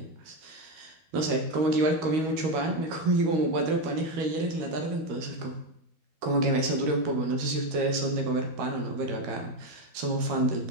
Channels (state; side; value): late; left; 13 ms